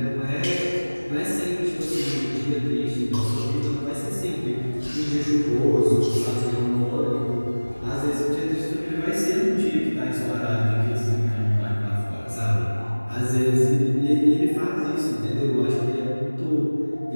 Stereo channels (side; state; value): both; inverted; correlation -1.00